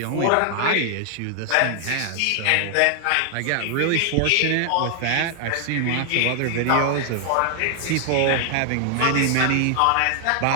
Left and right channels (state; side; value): different; both; correlation 0.00